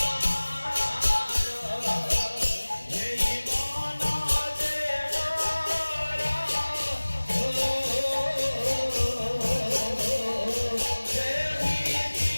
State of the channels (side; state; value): both; inverted; correlation -1.00